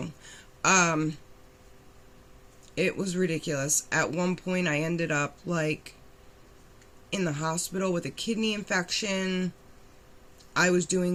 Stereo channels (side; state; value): both; identical; correlation 1.00